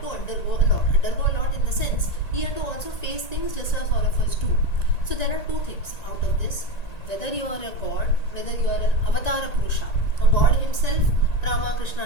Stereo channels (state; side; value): late; right; 1.9 ms